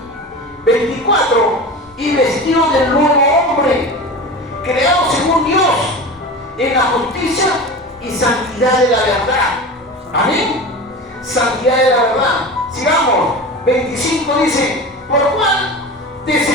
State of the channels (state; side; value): normal; both; correlation 0.30